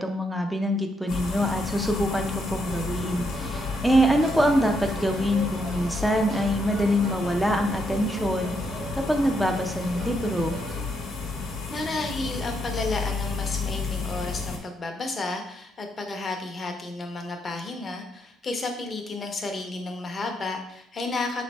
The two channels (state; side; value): normal; both; correlation 0.78